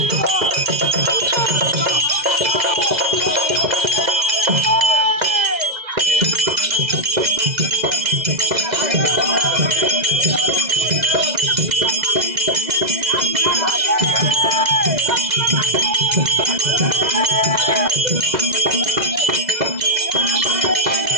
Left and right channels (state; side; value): late; left; 2.0 ms